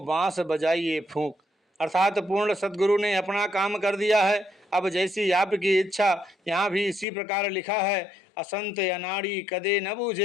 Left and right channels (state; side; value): drops out; right; at 7.1 s